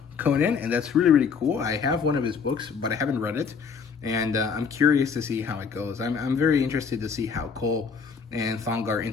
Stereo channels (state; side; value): quieter; right; 5.9 dB